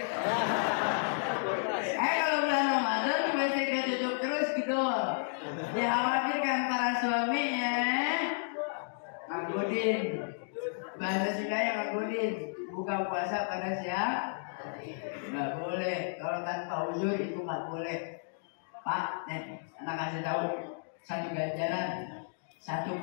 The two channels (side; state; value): right; silent; digital silence